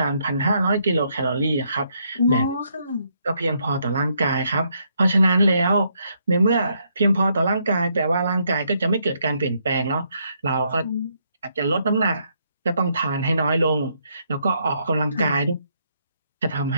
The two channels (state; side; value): inverted; both; correlation -0.74